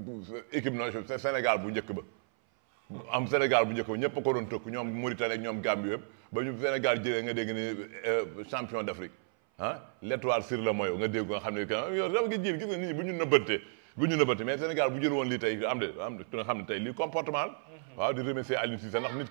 équipe nationale Sénégal bu njëkk ba am Sénégal bu njëkk ba ñëpp a ko doon tëkk ñoom Mauritanie ak ñoom Gambie yëpp ba ñu Sénégal jëlee nga dégg ni champion d'Afrique l'étoile sur le maillot nga dégg nga xam ne que yow dafa ngi jiir gis nga nit ñi bu ñu nëbbante mais Sénégal bu jël woon lii tey am de nga xam ne tey lii comportement la waaw di remercier Aliou Cissé ndax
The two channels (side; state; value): left; silent; 56 dB below the other